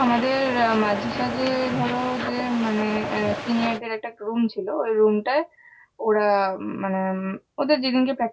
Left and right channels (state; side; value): identical; both; correlation 1.00